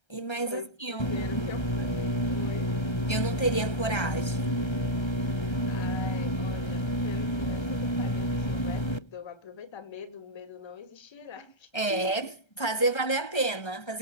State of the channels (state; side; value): late; right; 1.3 ms